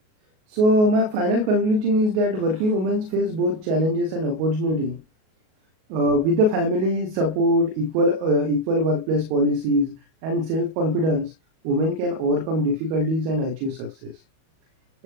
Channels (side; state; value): left; late; 38 ms